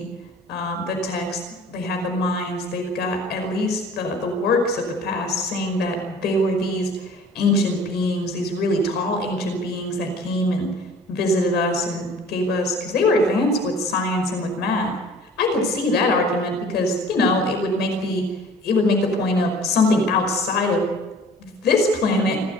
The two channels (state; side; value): normal; both; correlation 0.48